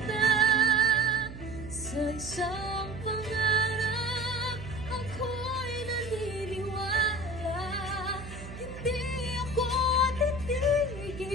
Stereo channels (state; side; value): noise; right; hum, 12 dB below the sound